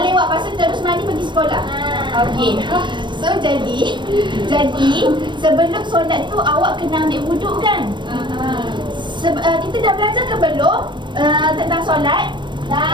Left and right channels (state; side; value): late; left; 0.22 ms